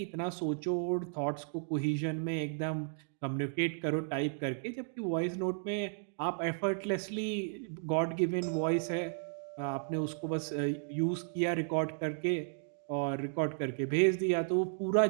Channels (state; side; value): silent; left; digital silence